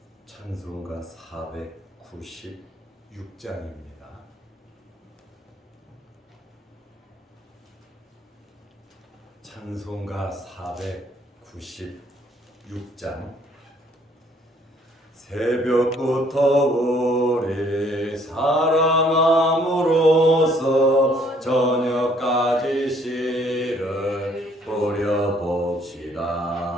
찬송가 496장입니다. 찬송가 496장. 새벽부터 우리 사랑함으로써 저녁까지 씨를 뿌려봅시다.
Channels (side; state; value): both; normal; correlation 0.63